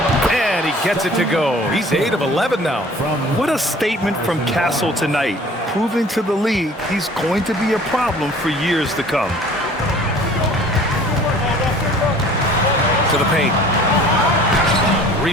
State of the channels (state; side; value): normal; both; correlation 0.49